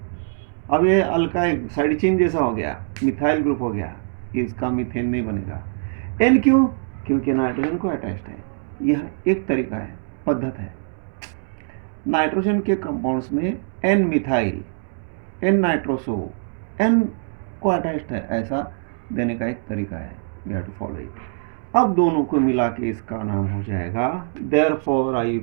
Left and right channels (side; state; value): left; silent; digital silence